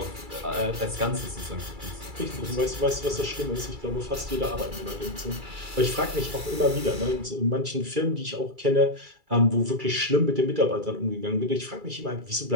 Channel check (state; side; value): late; left; 2.3 ms